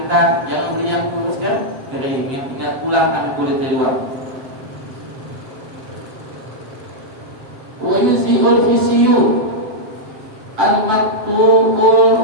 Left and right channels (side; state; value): left; late; 7.5 ms